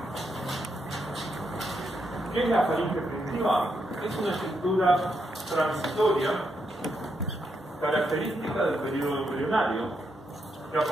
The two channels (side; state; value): both; normal; correlation 0.80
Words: ¿Qué es la faringe primitiva? Es una estructura transitoria característica del periodo embrionario que